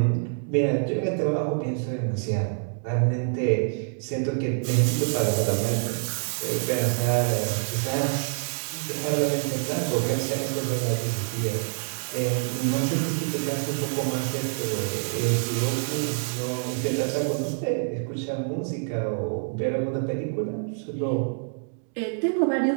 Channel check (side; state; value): left; silent; digital silence